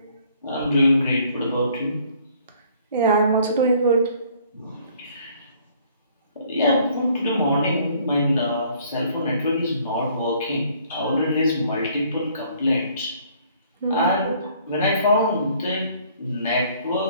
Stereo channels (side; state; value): both; inverted; correlation -0.60